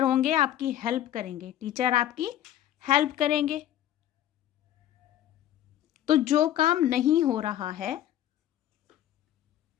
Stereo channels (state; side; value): quieter; right; 12.1 dB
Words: होंगे आपकी हेल्प करेंगे, टीचर आपकी हेल्प करेंगे। तो जो काम नहीं हो रहा है,